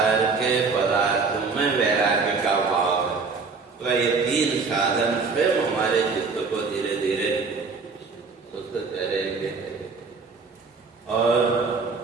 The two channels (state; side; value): quieter; left; 4.6 dB